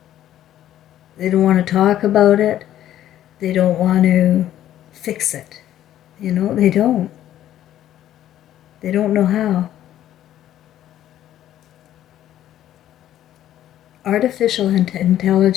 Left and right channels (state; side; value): quieter; right; 12.1 dB